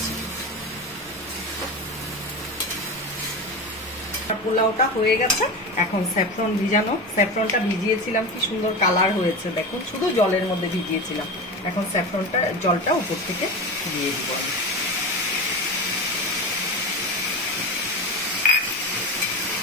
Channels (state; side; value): normal; both; correlation 0.25